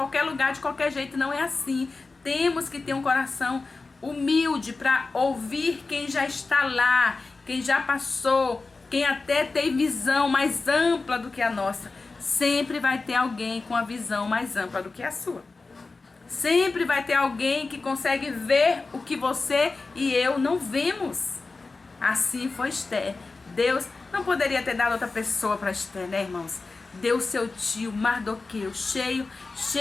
lugar de qualquer jeito, não é assim. Temos que ter um coração humilde para ouvir quem já está lá, quem já passou, quem até tem visão mais ampla do que a nossa. Sempre vai ter alguém com a visão mais ampla do que a sua. Sempre vai ter alguém que consegue ver o que você e eu não vemos. Assim foi Esther. Deus não poderia ter dado outra pessoa para Esther, né, irmãos? Deu seu tio Mardoqueu, cheio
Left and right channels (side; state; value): right; quieter; 3.8 dB